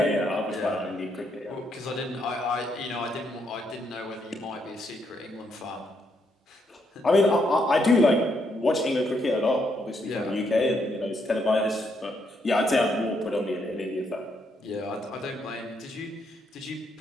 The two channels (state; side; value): normal; both; correlation 0.76